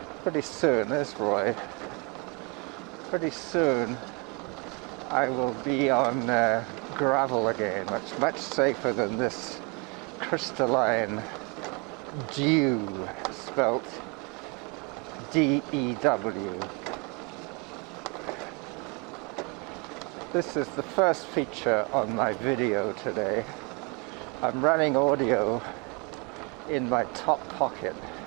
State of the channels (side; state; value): left; quieter; 30.8 dB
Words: Pretty soon, there's Roy. Pretty soon I will be on gravel again, much safer than this crystalline dew, spelt D-E-W. This is the first feature on my video today. I'm running audio in my top pocket.